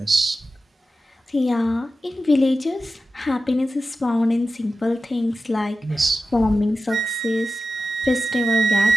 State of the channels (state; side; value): normal; both; correlation 0.93